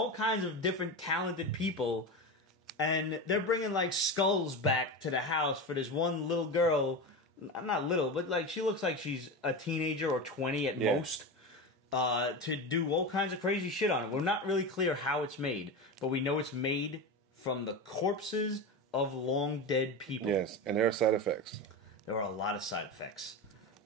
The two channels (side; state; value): both; normal; correlation 0.22